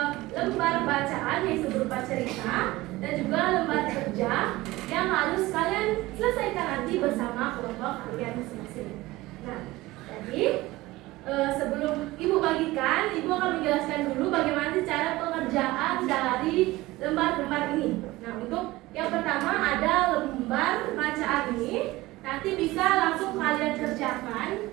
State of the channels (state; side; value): quieter; left; 19.1 dB